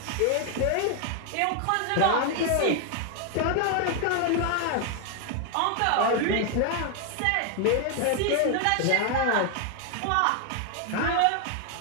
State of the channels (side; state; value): both; different; correlation 0.00